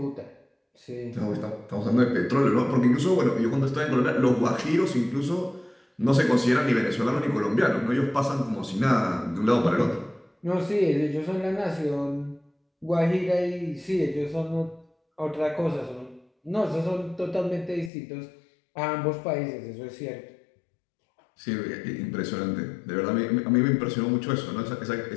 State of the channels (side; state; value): right; drops out; at 17.9 s